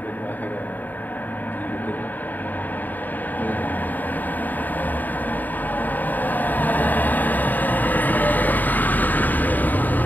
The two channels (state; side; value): late; right; 0.086 ms